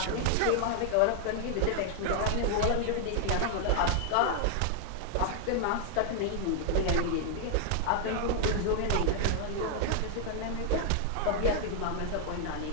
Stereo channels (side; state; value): both; different; correlation 0.00